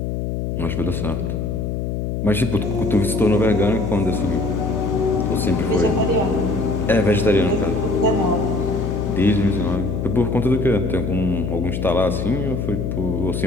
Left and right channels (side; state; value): left; noise; hum, 2 dB below the sound